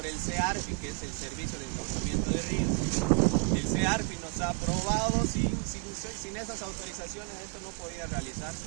el CEARPI, que es el Servicio de Encauzamiento de Ríos. El CEARPI nos ha aprobado, sin esas autorizaciones esto no podía realizarse.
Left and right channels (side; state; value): left; quieter; 34.5 dB